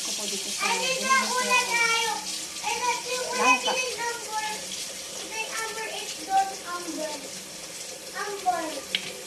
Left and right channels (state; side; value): identical; both; correlation 1.00